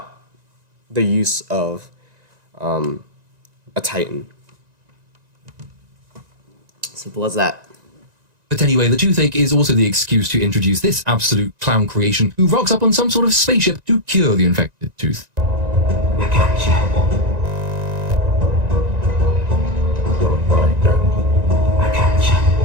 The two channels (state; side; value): late; left; 1.9 ms